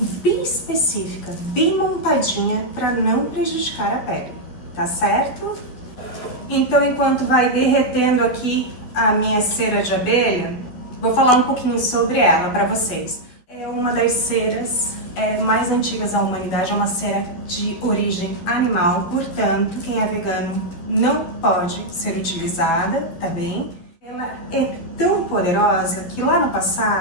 bem específica, bem montadinha, para não prejudicar a pele, tá certo? Então, enquanto vai derretendo aqui a minha cera de abelha, vou falar um pouquinho sobre ela para vocês. É uma das ceras mais antigas da humanidade, é uma cera de origem animal, portanto, quem é vegano não pode ser utilizada, tá bem? Ela é tão poderosa que lá no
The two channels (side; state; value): right; late; 12 ms